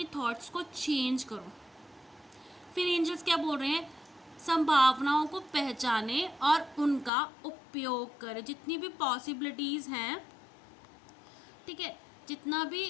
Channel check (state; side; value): drops out; right; at 7.1 s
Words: थॉट्स को चेंज करो। फिर एंजल्स क्या बोल रहे हैं, संभावनाओं को पहचाने और उनका उपयोग करें। जितनी भी पॉसिबिलिटीज़ हैं, ठीक है,